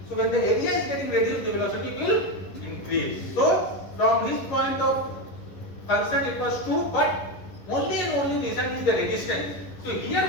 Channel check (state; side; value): late; right; 11 ms